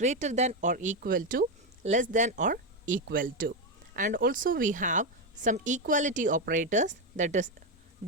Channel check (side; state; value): both; normal; correlation 0.08